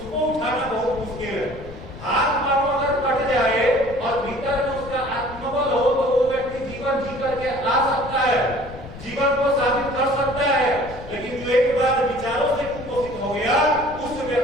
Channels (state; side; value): noise; left; rumble, 15 dB below the sound